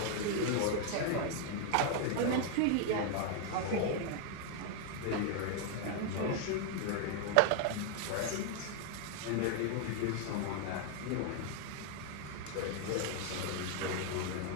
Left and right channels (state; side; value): different; both; correlation 0.00